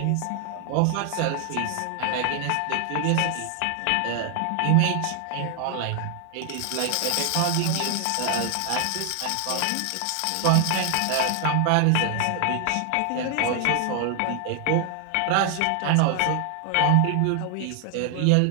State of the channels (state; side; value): different; both; correlation 0.00